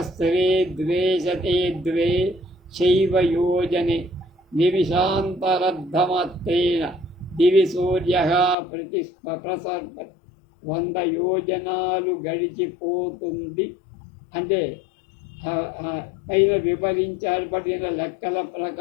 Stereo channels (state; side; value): drops out; right; at 8.6 s